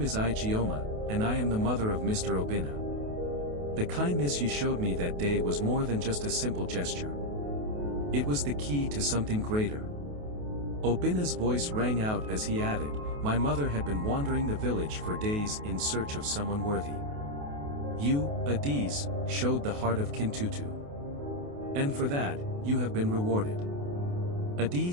is Igioma, and I am the mother of Mr. Obina. The kindness you showed me that day was more than just a simple gesture. It was the key to something greater." Obina's voice rang out as he added, "My mother had been wandering the village for days in search of someone worthy. You, Adiz, showed the heart of Kintutu. And for that, you have been rewarded."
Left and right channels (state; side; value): late; left; 28 ms